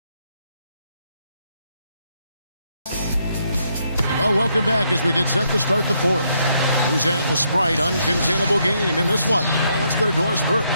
Well, welcome back as we get set to start the fourth. Who's at the Sprite uncontainable game in this one? Well, let's go to Doris Burke.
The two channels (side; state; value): both; inverted; correlation -0.75